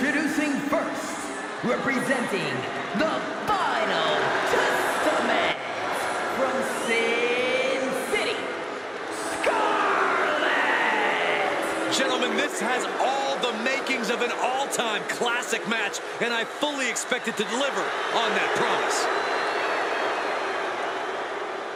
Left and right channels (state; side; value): identical; both; correlation 1.00